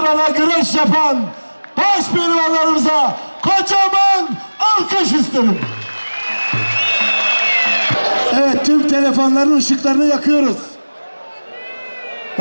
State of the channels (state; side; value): inverted; both; correlation -1.00